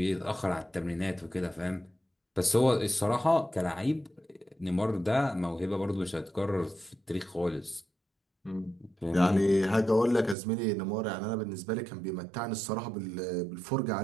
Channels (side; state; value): left; drops out; at 10.4 s